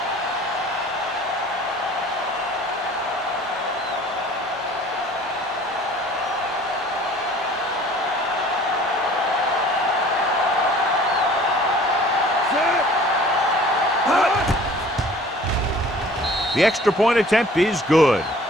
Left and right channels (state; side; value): normal; both; correlation 0.50